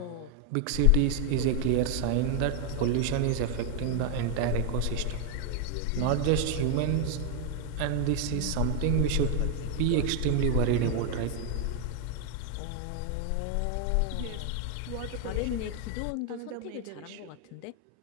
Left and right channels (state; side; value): different; both; correlation 0.00